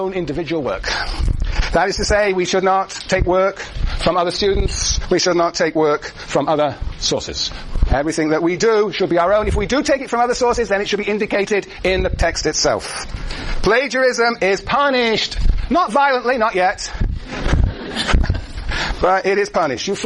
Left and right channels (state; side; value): identical; both; correlation 1.00